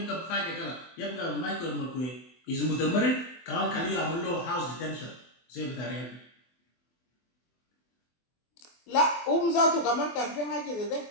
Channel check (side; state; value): right; late; 24 ms